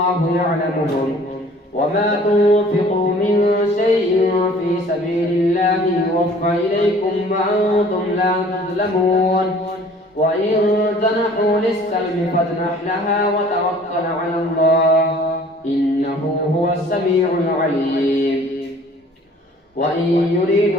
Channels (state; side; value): normal; both; correlation 0.52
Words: يعلمهم وما تنفقوا من شيء في سبيل الله يوفى إليكم وأنتم لا تظلمون وإن جنحوا للسلم فاجنح لها وتوكل على الله إنه هو السميع العليم وإن